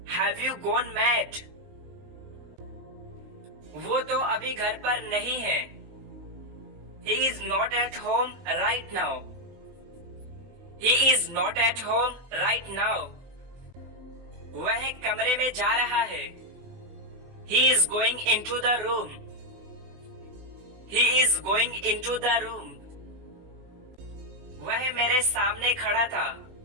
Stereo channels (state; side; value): late; left; 20 ms